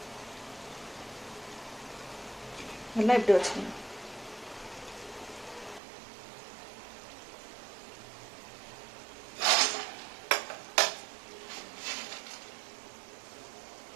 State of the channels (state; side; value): drops out; left; at 5.8 s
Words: எல்லாம் இப்படி வச்சுக்கணும்.